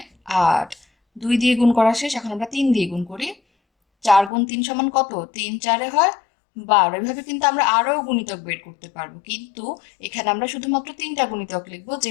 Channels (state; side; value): drops out; right; at 4.3 s